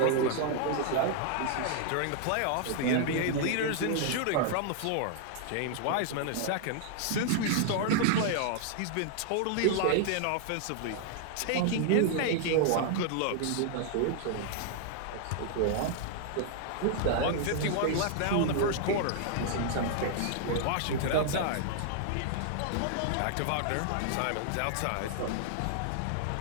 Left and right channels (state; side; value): different; both; correlation -0.01